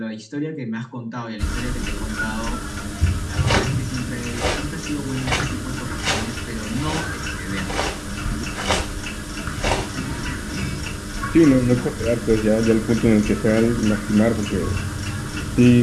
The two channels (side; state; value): both; identical; correlation 1.00